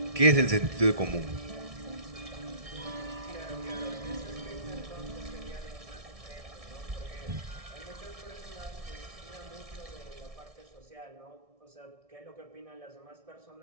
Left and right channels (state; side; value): late; left; 1.6 ms